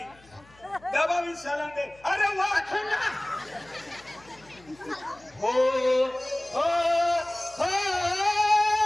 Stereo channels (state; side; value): noise; left; hum, 27 dB below the sound